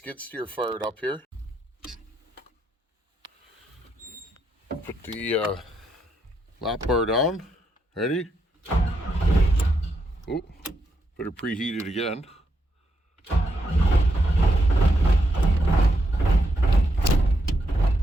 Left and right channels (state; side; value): normal; both; correlation 0.79